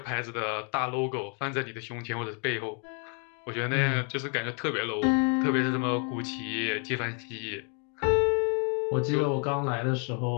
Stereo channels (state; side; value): quieter; right; 38.4 dB